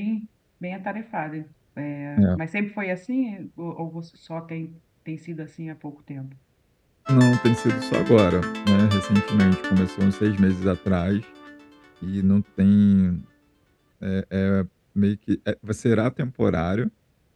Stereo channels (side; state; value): both; identical; correlation 1.00